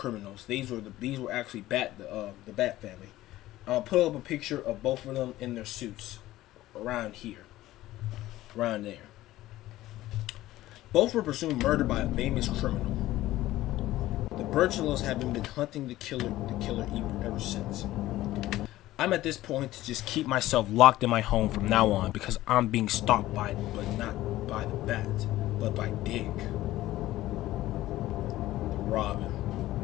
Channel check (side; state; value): right; quieter; 15.8 dB